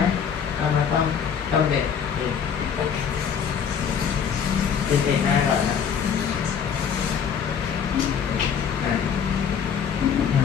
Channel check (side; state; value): right; quieter; 7.4 dB